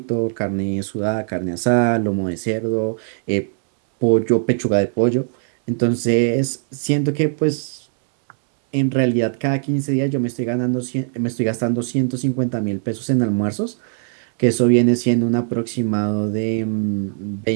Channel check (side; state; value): left; silent; 64 dB below the other